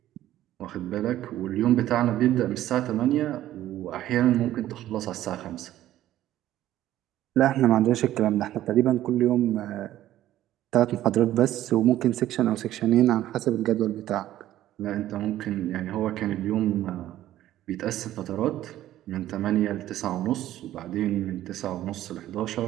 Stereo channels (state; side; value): quieter; left; 13.5 dB